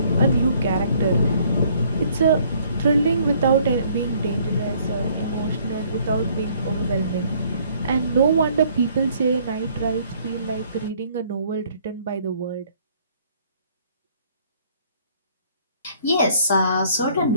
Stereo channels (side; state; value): both; inverted; correlation -0.61